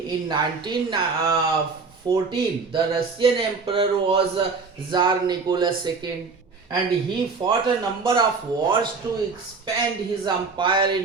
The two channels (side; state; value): left; quieter; 4.6 dB